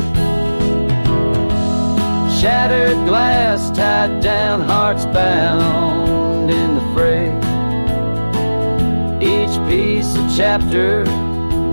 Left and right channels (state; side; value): inverted; both; correlation -1.00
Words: Shattered glass tied down, hearts bound in the fray, each piece a chapter